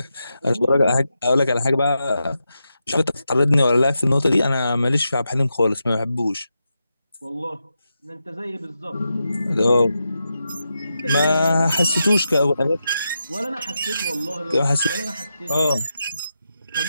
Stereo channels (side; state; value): both; inverted; correlation -0.87